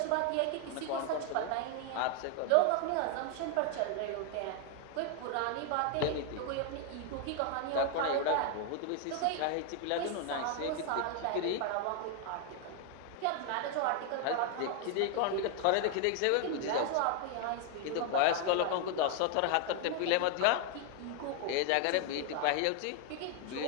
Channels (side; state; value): both; different; correlation 0.00